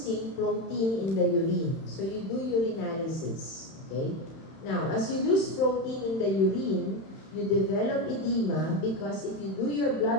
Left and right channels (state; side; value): late; right; 31 ms